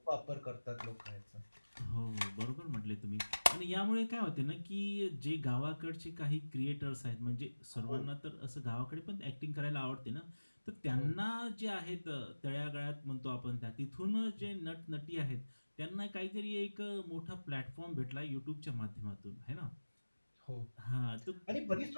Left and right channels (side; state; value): both; inverted; correlation -1.00